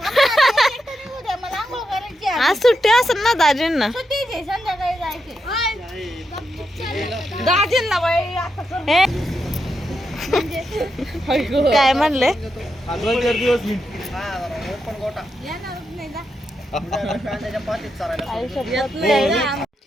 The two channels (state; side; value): normal; both; correlation 0.85